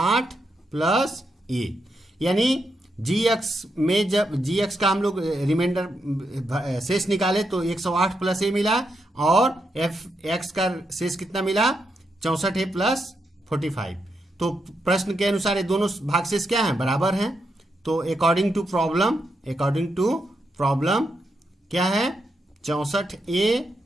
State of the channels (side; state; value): both; normal; correlation 0.83